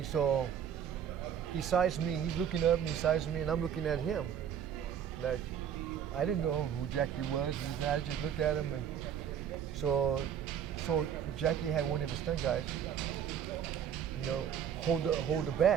so he sized me, he's looking up me, sized me, and I'm looking at him. Like, I didn't know who Jackie was, I just looked at him, and so Jackie had one of his stunt guys, you know, hold the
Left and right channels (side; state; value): left; quieter; 8.9 dB